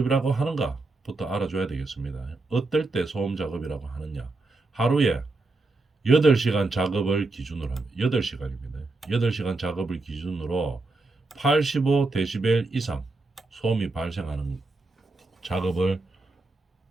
하는가부터 알아줘야 되겠습니다. 어떨 때 소음 작업이라고 하느냐? 하루에 8시간 작업을 기준으로 합니다. 8시간입니다. 8시간 작업을 기준으로 85데시벨 이상 소음이 발생하는 작업을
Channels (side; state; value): left; quieter; 3.3 dB